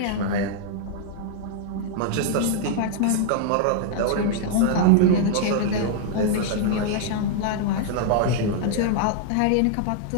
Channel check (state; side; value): different; both; correlation -0.01